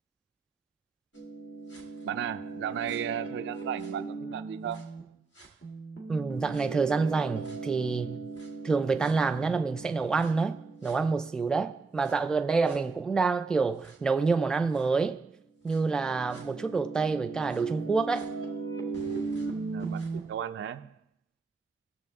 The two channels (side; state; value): left; quieter; 4.3 dB